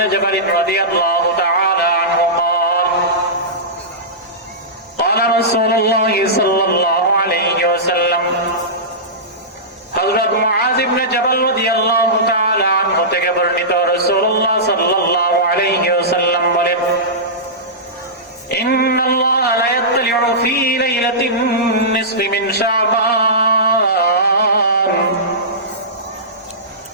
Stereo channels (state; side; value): normal; both; correlation -0.17